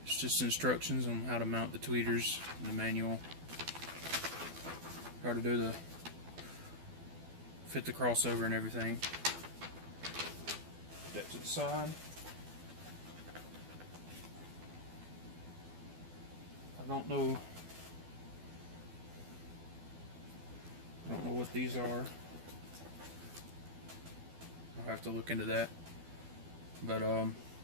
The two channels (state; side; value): late; left; 12 ms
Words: It's just instructions on how to mount the tweeters in the manual. How to do the fit the crossover and everything. Put that to the side. I don't know what these are. I'll have to look into that. But